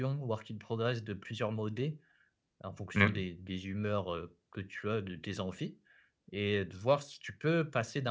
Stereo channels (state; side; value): identical; both; correlation 1.00